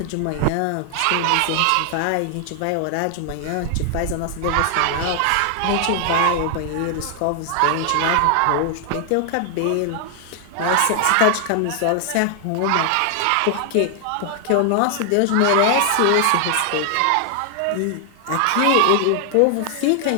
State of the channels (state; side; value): different; both; correlation 0.00